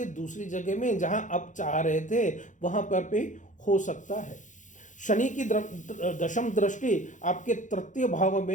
दूसरी जगह में जहां आप चाह रहे थे वहां पर भी हो सकता है। शनि की दशम दृष्टि आपके तृतीय भाव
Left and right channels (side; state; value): right; late; 0.36 ms